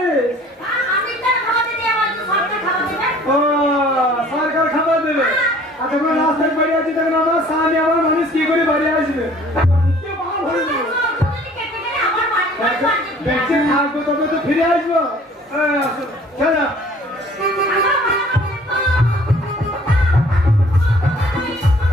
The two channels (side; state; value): both; normal; correlation 0.53